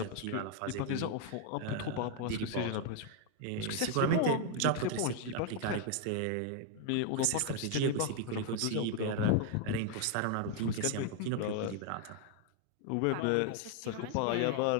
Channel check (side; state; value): both; different; correlation 0.00